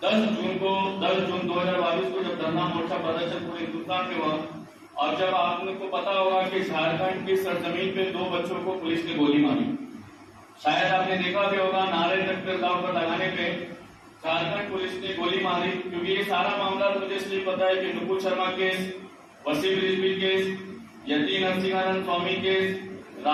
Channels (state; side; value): identical; both; correlation 1.00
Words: 10 जून 2022 को जब धरना मोर्चा प्रदर्शन पूरे हिंदुस्तान में हुआ और जब आपको पता होगा कि झारखंड की सरजमीन पे 2 बच्चों को पुलिस ने गोली मारी, शायद आपने देखा भी होगा नारे तकबीर अल्लाहू अकबर लगाने पे झारखंड पुलिस ने गोली मारी। क्योंकि ये सारा मामला मुझे इसलिए पता है कि नुपुर शर्मा केस, वसीम रिजवी केस, यती नरसिंहानंद स्वामी केस,